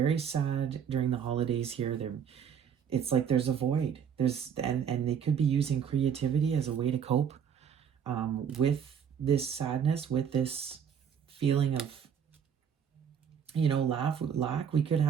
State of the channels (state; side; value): quieter; left; 7.8 dB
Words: sad during the holidays here. It's like there's a void. And they could be using creativity as a way to cope with this sadness, with this feeling of, lack. We could